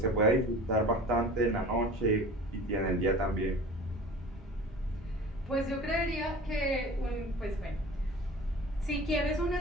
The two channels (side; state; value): both; normal; correlation 0.40